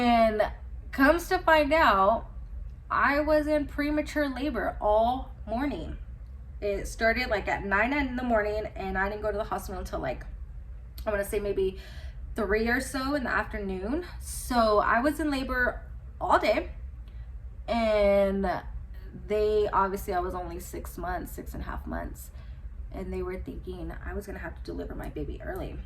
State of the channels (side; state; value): both; identical; correlation 1.00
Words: comes to find out, I was in premature labor all morning. It started like at 9 in the morning, and I didn't go to the hospital until like, I want to say maybe 3 or so in the afternoon. So I was in labor all day, and I was only 6.5 months, and they were thinking I was gonna have to deliver my baby early,